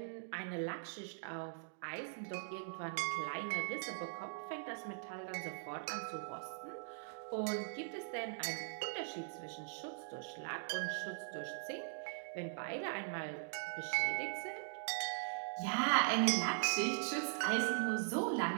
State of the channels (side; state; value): left; silent; digital silence